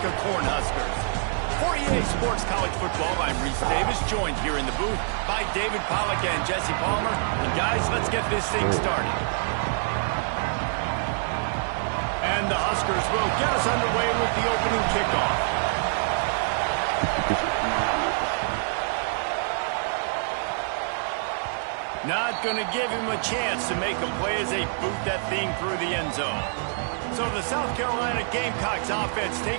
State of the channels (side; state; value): left; silent; digital silence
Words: Cornhuskers. For EA Sports College Football, I'm Reese Davis, joined here in the booth by David Pollack and Jesse Palmer. And guys, let's get this thing started. And the Huskers will get us underway with the opening kickoff. Not going to give him a chance to make a play as they boot that thing through the end zone. So the South Carolina Gamecocks offense